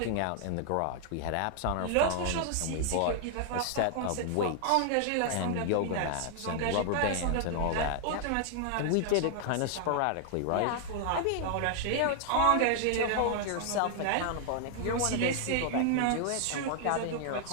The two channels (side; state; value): both; different; correlation 0.00